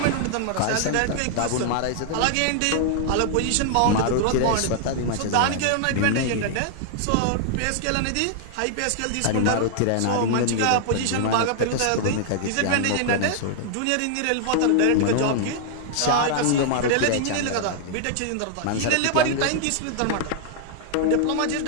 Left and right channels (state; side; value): different; both; correlation 0.00